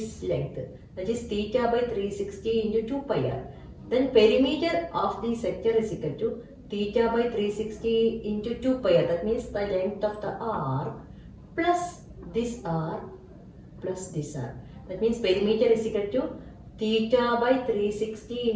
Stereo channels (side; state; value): both; identical; correlation 1.00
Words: length. That is theta by 360 into 2 pi r. Then perimeter of the sector is equal to theta by 360 into 2 pi r. That means the length of the arc plus this arc plus this arc. That means perimeter is equal to theta by 360